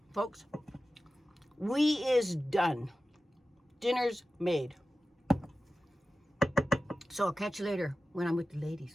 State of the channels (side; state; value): both; normal; correlation 0.94